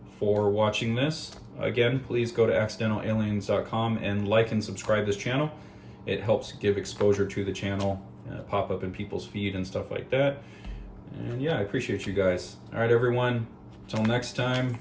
for watching this. Again, please go to accidentalaliens.com and like and subscribe this channel. It helps give exposure to the channel, pop up in people's feed and stuff like that. And yeah, I appreciate you guys. All right, everyone. Till next time,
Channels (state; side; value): identical; both; correlation 1.00